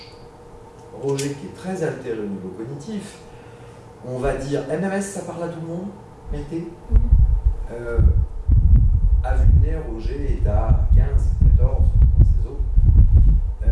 Roger, qui est très altéré au niveau cognitif, on va dire MMS, ça parle à tout le monde, mettez. À vue de nez, Roger est à 15, 14 dans ses os.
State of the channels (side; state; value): both; identical; correlation 1.00